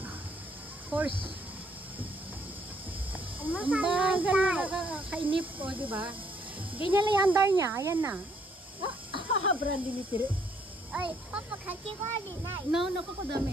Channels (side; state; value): both; normal; correlation 0.68